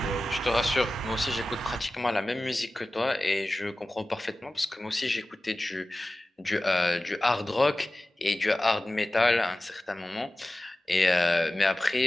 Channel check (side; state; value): both; normal; correlation 0.96